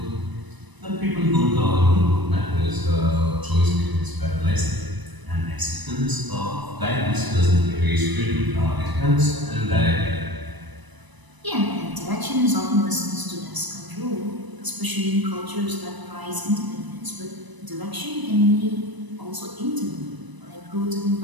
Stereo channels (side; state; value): left; late; 1.0 ms